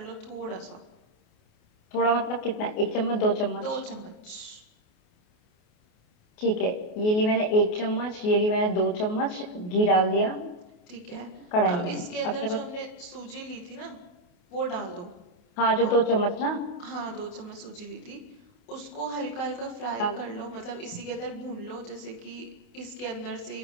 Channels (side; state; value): right; late; 28 ms